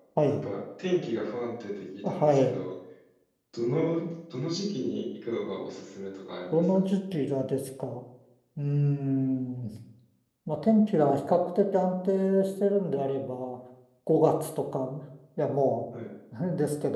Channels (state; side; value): identical; both; correlation 1.00